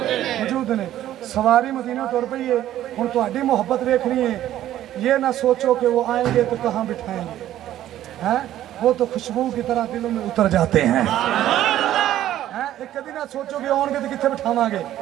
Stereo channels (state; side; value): quieter; left; 12.7 dB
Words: ने। सवारी मदीना तुर पई है, हुण तुहाडी मुहब्बत देखनी है, ये ना सोचो कि वो आएंगे तो कहाँ बिठाएंगे, हैं वो तो खुशबू की तरह दिलों में उतर जाते हैं, एक कभी ना सोचो कि आउणगे तो कित्थे बिठावांगे,